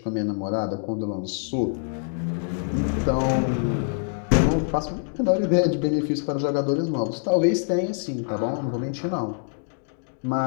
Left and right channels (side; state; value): right; silent; digital silence